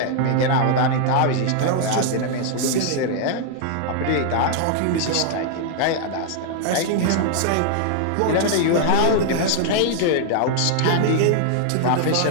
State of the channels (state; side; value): different; both; correlation 0.00